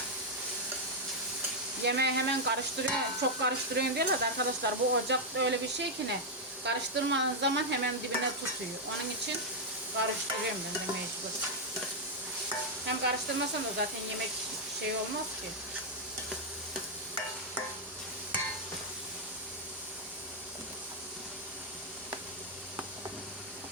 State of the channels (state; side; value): normal; both; correlation -0.02